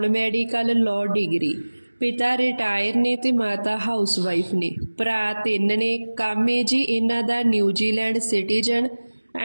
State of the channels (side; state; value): both; inverted; correlation -1.00